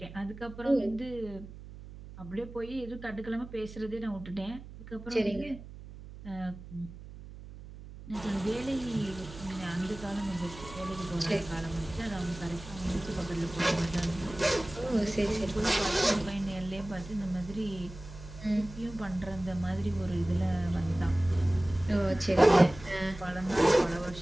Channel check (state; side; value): noise; right; hum, 15 dB below the sound